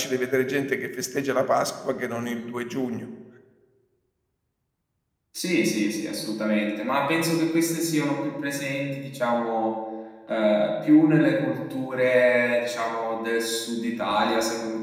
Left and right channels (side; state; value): both; identical; correlation 1.00